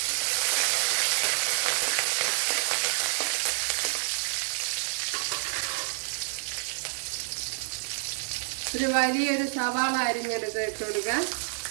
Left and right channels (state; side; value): silent; left; digital silence